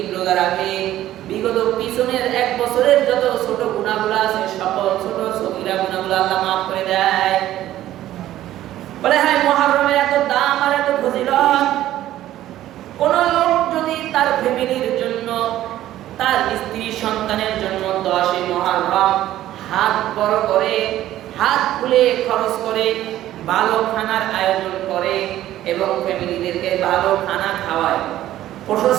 রোজা রাখে, বিগত পিছনের 1 বছরের যত ছোট গুনাহগুলো আছে, সকল ছোট সগীরা গুনাহগুলো আল্লাহ মাফ করে দেয়। বলে হ্যাঁ, মুহররমের এত দাম আর এত ফজিলত, কোন লোক যদি তার ফ্যামিলির জন্য, তার স্ত্রী সন্তানের জন্য 10 মুহররম হাত বড় করে, হাত খুলে খরচ করে, ভালো খানার আয়োজন করে এবং ফ্যামিলিদেরকে ভালো খানা খাওয়ায়,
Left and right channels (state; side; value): quieter; left; 13.5 dB